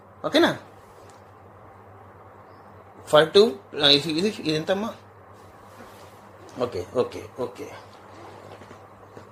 ఓకేనా. ఫర్ 2 ఇది ఎంతమ్మా? Okay okay okay.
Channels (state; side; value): identical; both; correlation 1.00